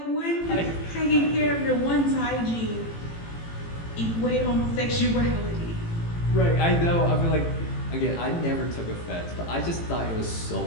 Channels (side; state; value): right; late; 18 ms